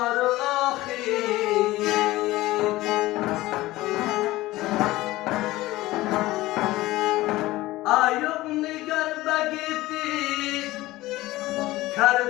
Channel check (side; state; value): right; quieter; 17.9 dB